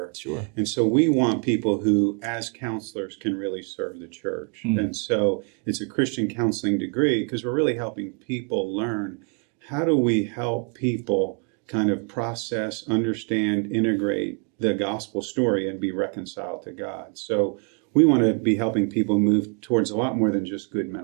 Sure. And so we want people who, as counselors, can really serve the church. And so it's a Christian counseling degree because we're really helping people learn how do we help people kind of process, understand, integrate the gospel story and be reconciled to God. So we want to be helping people move towards a lot more than just good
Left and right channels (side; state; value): left; quieter; 39.2 dB